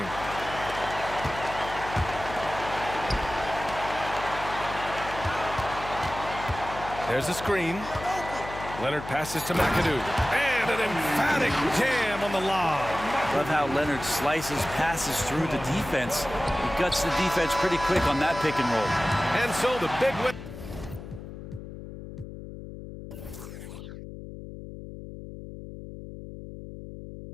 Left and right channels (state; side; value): noise; left; hum, 11 dB below the sound